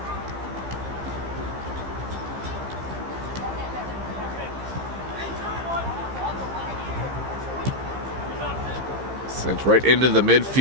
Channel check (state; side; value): late; left; 15 ms